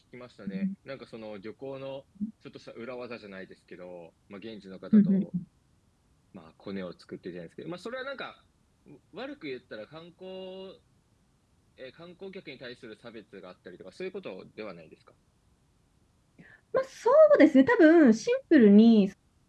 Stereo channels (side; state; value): both; identical; correlation 1.00